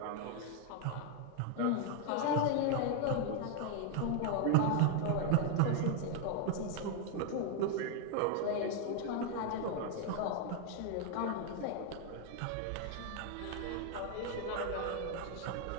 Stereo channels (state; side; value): different; both; correlation 0.00